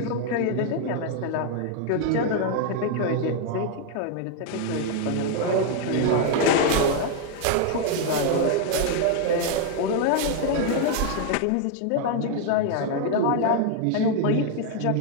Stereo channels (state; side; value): different; both; correlation 0.00